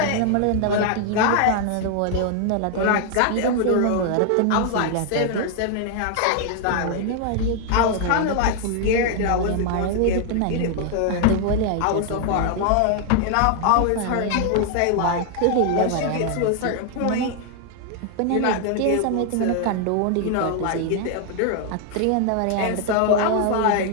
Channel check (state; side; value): different; both; correlation 0.00